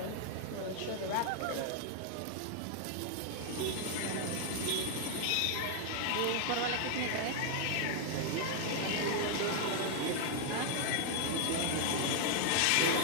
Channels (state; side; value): different; both; correlation 0.00